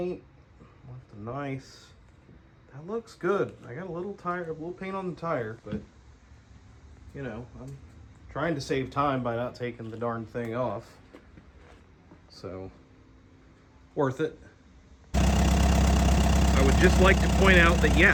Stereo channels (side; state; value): both; identical; correlation 1.00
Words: Left a nice. That looks good. I got a little paint on the tire, but I'm trying to save time by not taking the darn thing off. So, worth it. I would just like to point out that